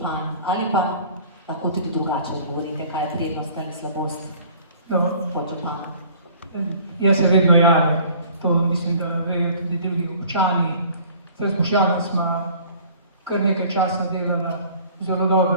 ali pa lahko tudi drugače odgovorite, kaj je prednost ali slabost podžupana. Jaz se vedno javim. To mislim, da vejo tudi drugi občani. Zdaj s Boštjanom smo kar nekaj časa delala zelo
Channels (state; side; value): inverted; both; correlation -0.50